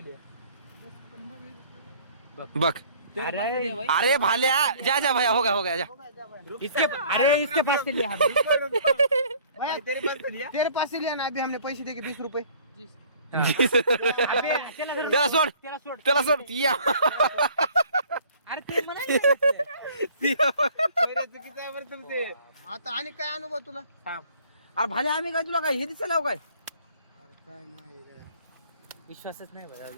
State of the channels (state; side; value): inverted; both; correlation -0.54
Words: बघ तेरे पास से लिया भाई. अरे भाल्या जा जा भैया हो गया जा. हो गया, जा भाई. इसके अरे इसके पास से लिया हमने. भैया तेरे पास से लिया. तेरे पास से लिया ना अभी हमने पैसे दे के 20 रुपये. अबे त्याला धर. त्याला सोड त्याला सोड. त्याला सोड या. अरे ते म्हणायचं. चुकीचं आहे बरं तुमचे. आता आणि काय अनुभव तुला? अरे भाल्या आम्ही काय तुला काय हे दिसायला काय. अरे काय नाही विश्वासच नाही बघा.